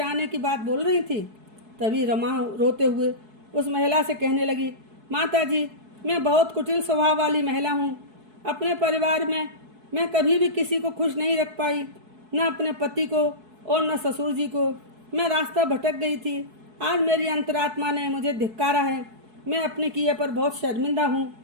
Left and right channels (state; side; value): late; left; 4.7 ms